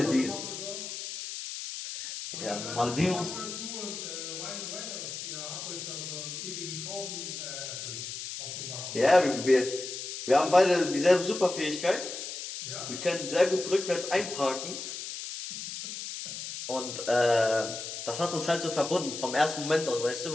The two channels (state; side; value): noise; left; hiss, 7 dB below the sound